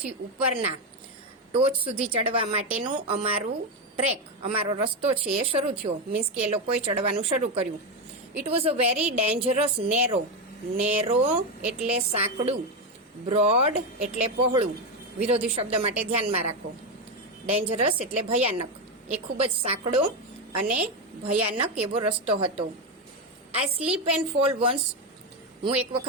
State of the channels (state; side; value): normal; both; correlation 0.10